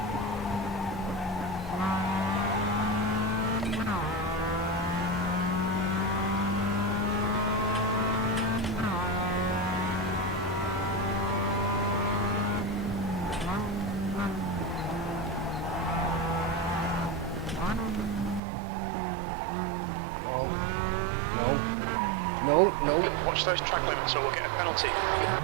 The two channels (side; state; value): left; drops out; at 18.4 s